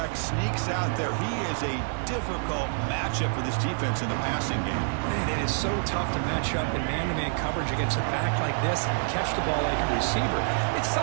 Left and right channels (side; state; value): left; silent; 59 dB below the other